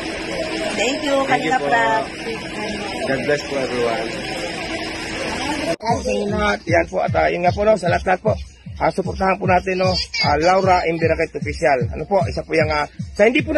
Thank you, kanila po. Prab. God bless po everyone. Yan po at yun nga po no, sa lahat po. Suportahan po natin no, Laura Imbirakit Official. Ano po, isa po yung sa hindi po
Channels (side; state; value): both; identical; correlation 1.00